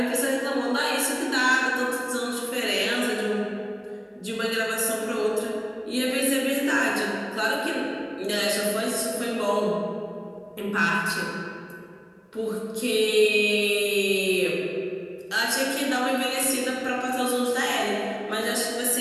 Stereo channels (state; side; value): identical; both; correlation 1.00